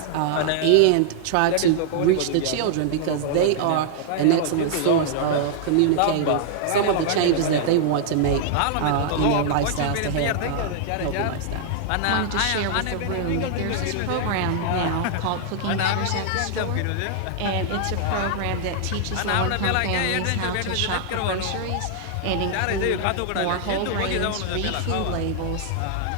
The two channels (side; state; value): both; different; correlation -0.01